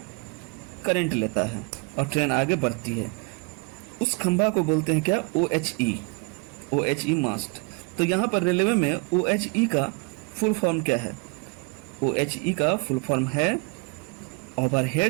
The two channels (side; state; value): left; quieter; 31.1 dB